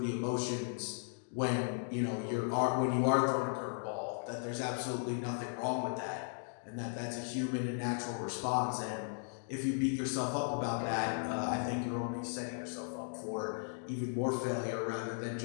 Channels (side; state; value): right; silent; digital silence